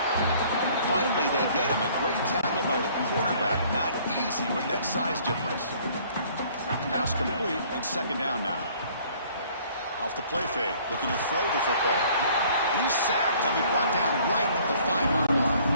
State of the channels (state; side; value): inverted; both; correlation -0.57